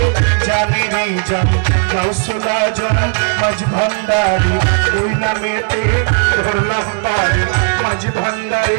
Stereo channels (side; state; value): left; quieter; 39.8 dB